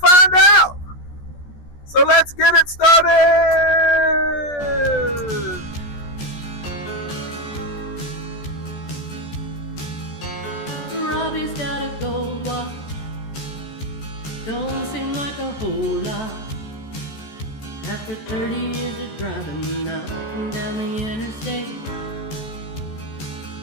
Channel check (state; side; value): late; right; 14 ms